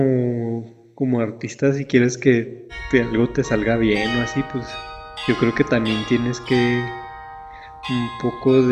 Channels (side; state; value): both; identical; correlation 1.00